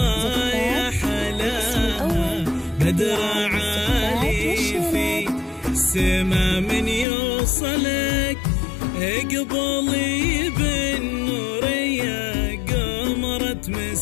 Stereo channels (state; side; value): drops out; right; at 7.1 s